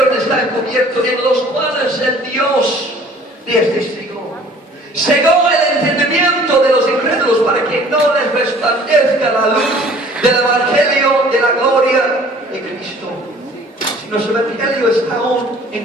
está encubierto, en los cuales el Dios de este siglo cegó el entendimiento de los incrédulos para que no les resplandezca la luz del evangelio de la gloria de Cristo. Si nuestro evangelio está aún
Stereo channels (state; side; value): normal; both; correlation 0.52